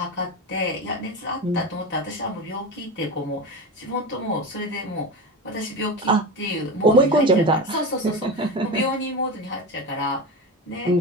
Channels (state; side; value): normal; both; correlation 0.24